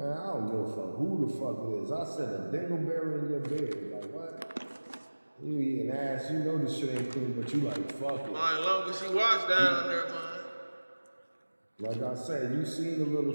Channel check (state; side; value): inverted; both; correlation -1.00